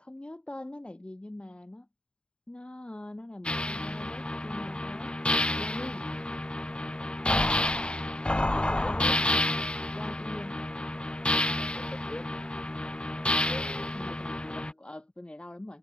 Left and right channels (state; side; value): late; right; 0.052 ms